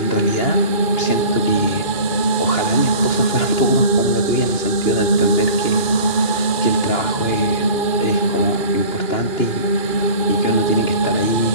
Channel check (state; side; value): late; right; 2.4 ms